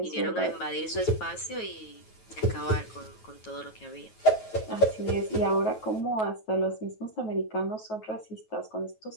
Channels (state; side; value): late; right; 9.3 ms